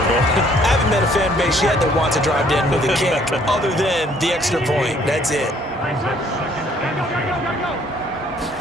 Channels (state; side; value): normal; both; correlation 0.62